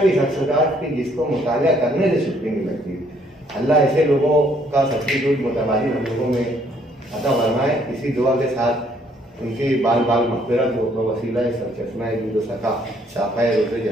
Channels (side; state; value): both; normal; correlation 0.66